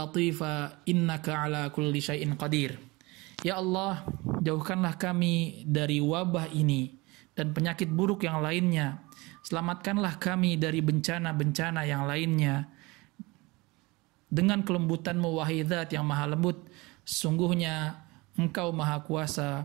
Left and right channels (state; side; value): quieter; left; 23.6 dB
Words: innaka ala kulli syai'in qadir. Ya Allah, jauhkanlah kami dari wabah ini dan penyakit buruk yang lainnya. Selamatkanlah kami dari bencana-bencana yang lainnya. Dengan kelembutan-Mu wahai Zat yang maha lembut, sungguhnya Engkau maha